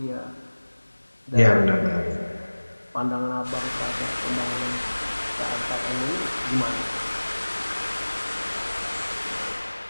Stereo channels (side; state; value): both; inverted; correlation -1.00